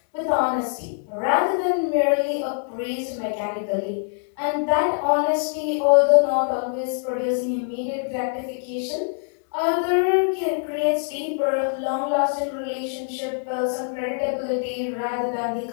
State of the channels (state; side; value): silent; right; 63 dB below the other